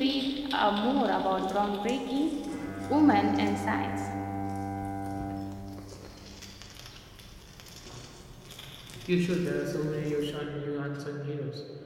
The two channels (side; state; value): both; identical; correlation 1.00